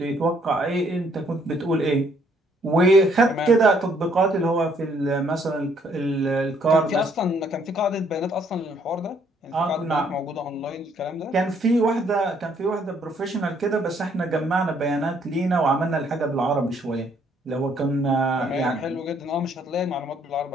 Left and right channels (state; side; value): normal; both; correlation 0.66